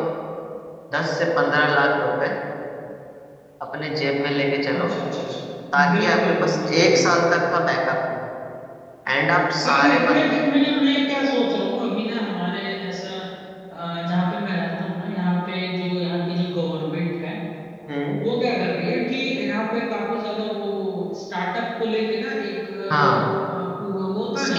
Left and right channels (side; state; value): both; identical; correlation 1.00